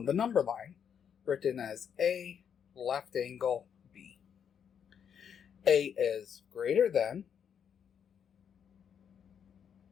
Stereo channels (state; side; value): quieter; right; 7.9 dB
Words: the number line, written as a left angle b. A is greater than